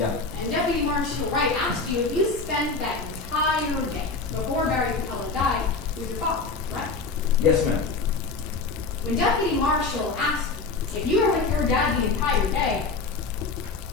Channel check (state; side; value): quieter; right; 4.0 dB